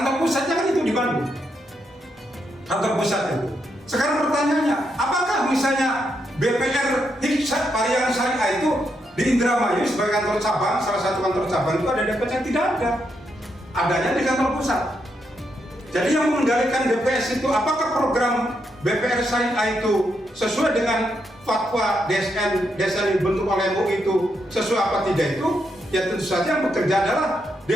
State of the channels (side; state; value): both; normal; correlation 0.80